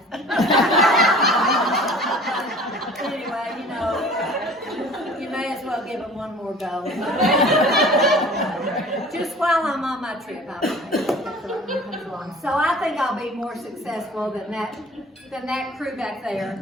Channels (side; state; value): both; normal; correlation 0.45